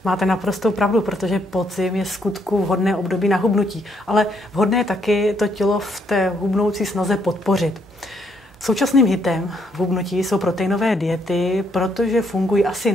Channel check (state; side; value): normal; both; correlation 0.72